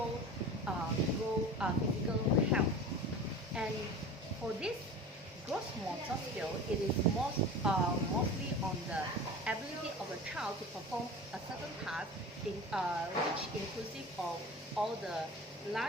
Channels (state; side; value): normal; both; correlation 0.35